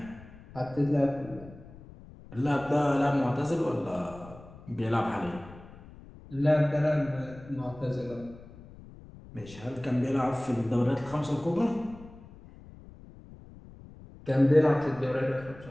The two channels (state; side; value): noise; left; rumble, 19 dB below the sound